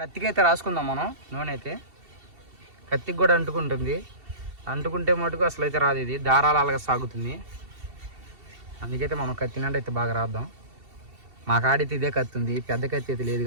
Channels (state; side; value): late; left; 2.7 ms